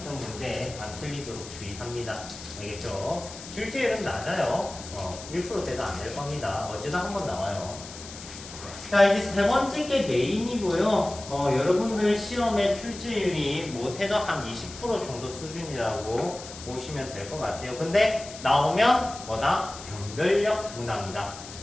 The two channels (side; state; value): left; noise; hiss, 14 dB below the sound